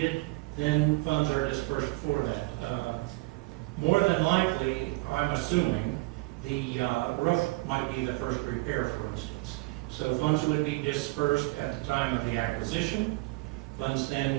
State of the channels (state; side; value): quieter; left; 23.5 dB